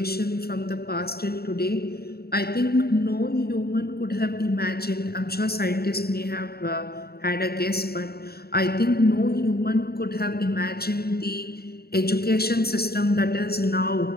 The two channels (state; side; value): late; right; 0.45 ms